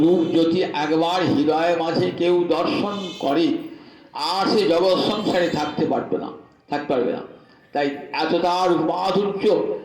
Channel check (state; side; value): identical; both; correlation 1.00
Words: রূপ যদি একবার হৃদয়ের মাঝে কেউ দর্শন করে, আর সে জগৎ সংসারে থাকতে পারবে না। তাই এতটা রূপাধুর্য,